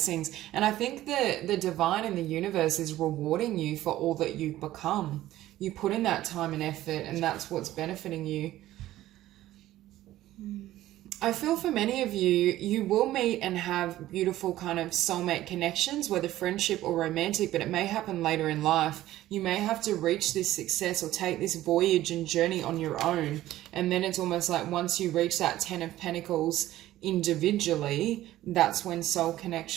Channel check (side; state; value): left; quieter; 14.7 dB